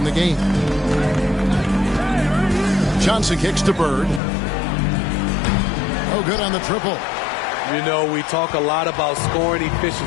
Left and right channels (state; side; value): drops out; right; at 4.2 s